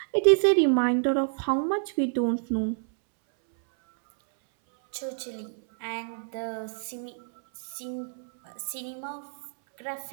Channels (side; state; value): left; silent; 59 dB below the other